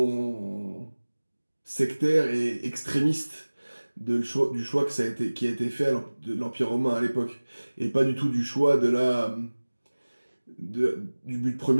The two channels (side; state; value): both; inverted; correlation -1.00